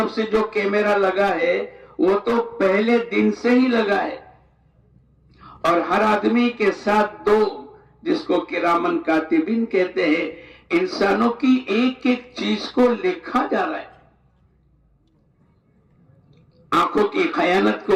سے جو کیمرہ لگا ہے وہ تو پہلے دن سے ہی لگا ہے، اور ہر آدمی کے ساتھ دو، جس کو کرامن کاتبین کہتے ہیں، انسانوں کی ایک ایک چیز کو لکھا جا رہا ہے۔ آنکھوں کی خیانت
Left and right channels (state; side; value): identical; both; correlation 1.00